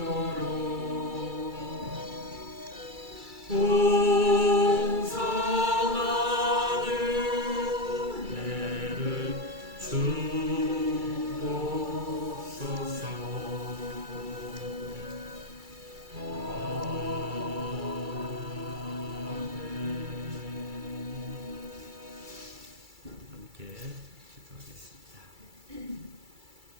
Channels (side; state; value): left; late; 2.3 ms